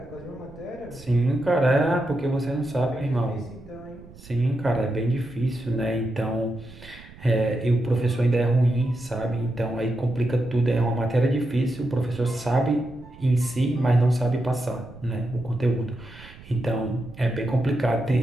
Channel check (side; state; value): right; noise; rumble, 20 dB below the sound